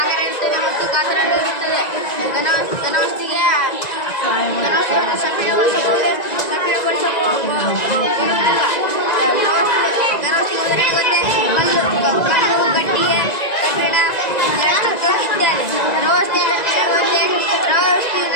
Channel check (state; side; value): late; right; 1.9 ms